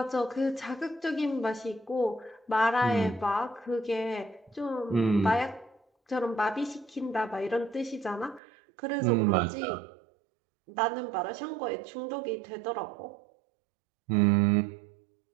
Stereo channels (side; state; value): left; drops out; at 8.4 s